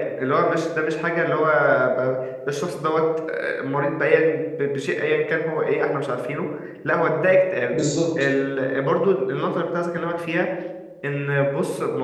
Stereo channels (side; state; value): both; identical; correlation 1.00